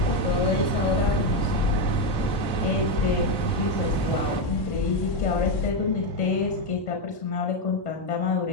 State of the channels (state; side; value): late; right; 1.1 ms